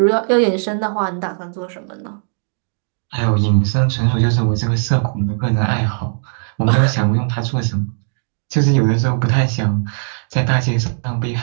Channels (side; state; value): left; silent; digital silence